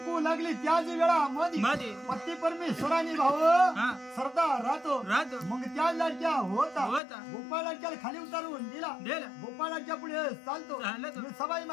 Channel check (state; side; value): drops out; right; at 7.0 s